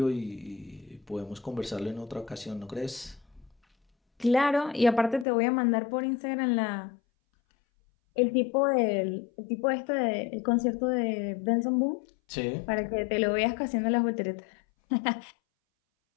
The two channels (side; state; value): right; drops out; at 5.2 s